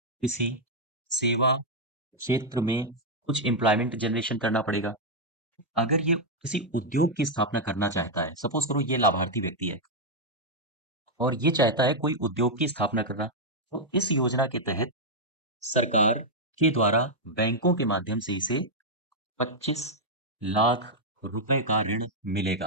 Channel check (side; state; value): both; normal; correlation -0.02